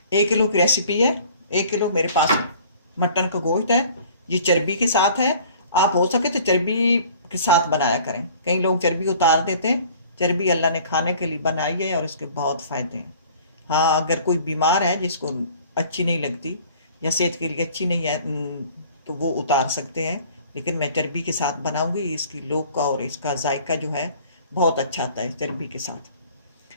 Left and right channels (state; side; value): inverted; both; correlation -0.50